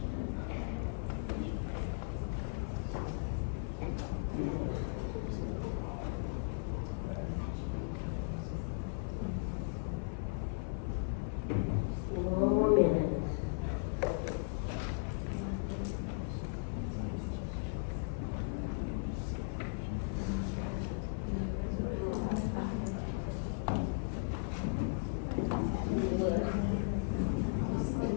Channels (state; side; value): silent; right; 53 dB below the other